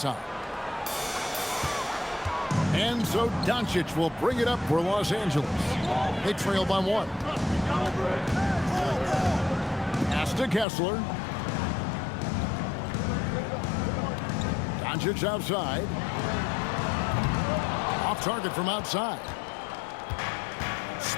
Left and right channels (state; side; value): drops out; right; at 10.7 s